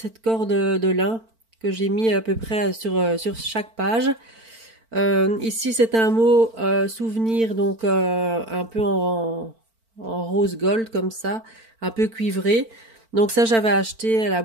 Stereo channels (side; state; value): left; late; 4.4 ms